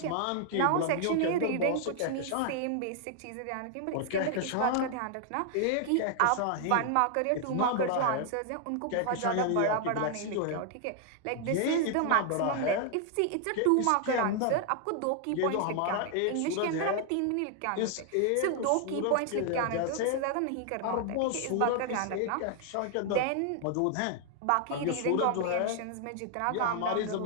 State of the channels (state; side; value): different; both; correlation 0.00